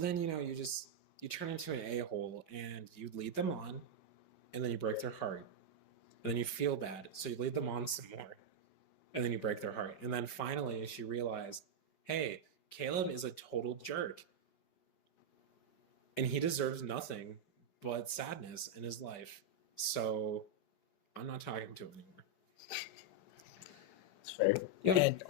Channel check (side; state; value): right; late; 5.2 ms